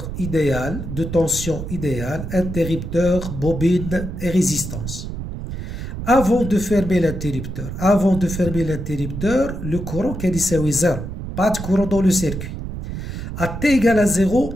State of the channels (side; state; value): right; noise; rumble, 7 dB below the sound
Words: idéal, de tension idéale, interrupteur, bobine et résistance. Avant de fermer l'interrupteur, le courant qui est 0. Pas de courant dans le circuit. À T égale à 0,